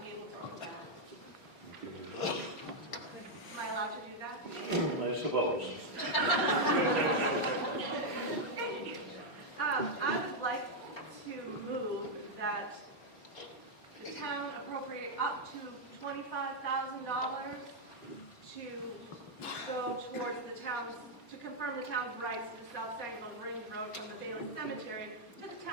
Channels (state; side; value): late; right; 4.4 ms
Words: able to do that. Am I allowed to do that? I suppose. I would like to move that the town appropriate up to $25,000 to go towards the town's, to confirm the town's rights to the South Sangerville Range Road from the Bailey Cemetery to the